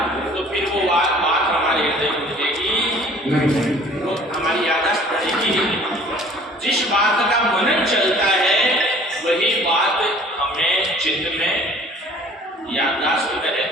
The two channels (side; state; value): both; normal; correlation 0.51